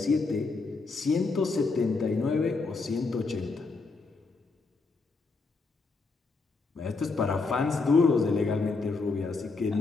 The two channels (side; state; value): right; quieter; 4.0 dB